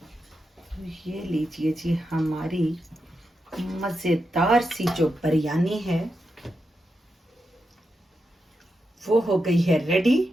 ये लीजिए जी, हमारी मज़ेदार सी जो बिरयानी है वो हो गई है रेडी।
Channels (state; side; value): normal; both; correlation 0.87